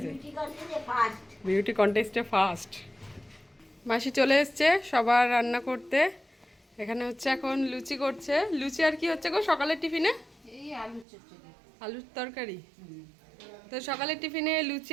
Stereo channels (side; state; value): left; drops out; at 11.1 s